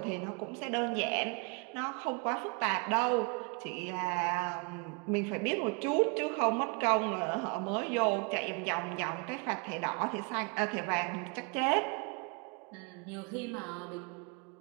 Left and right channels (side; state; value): left; quieter; 32.1 dB